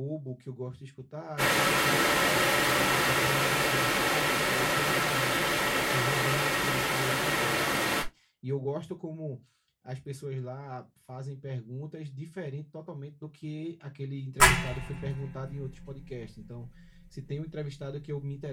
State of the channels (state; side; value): identical; both; correlation 1.00